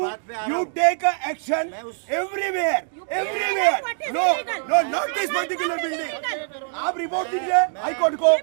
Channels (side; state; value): left; silent; digital silence